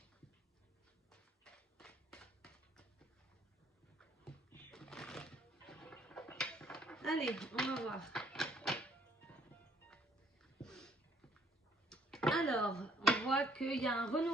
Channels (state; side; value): normal; both; correlation 0.64